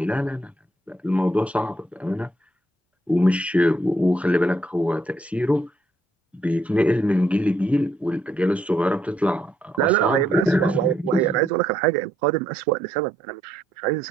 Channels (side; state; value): both; normal; correlation 0.73